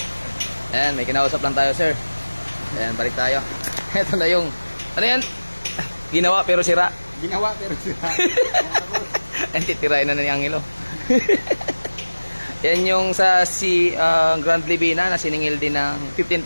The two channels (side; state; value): both; inverted; correlation -1.00